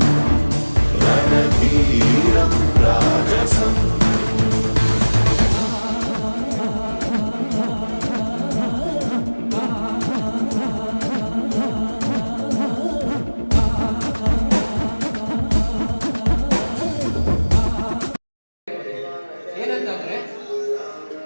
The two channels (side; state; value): both; inverted; correlation -1.00